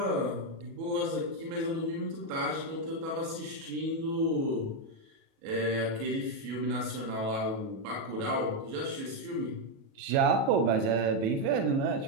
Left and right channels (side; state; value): left; late; 37 ms